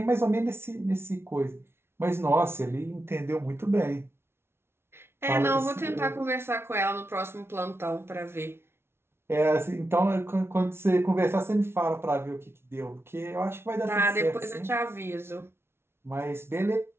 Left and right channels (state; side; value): late; left; 0.12 ms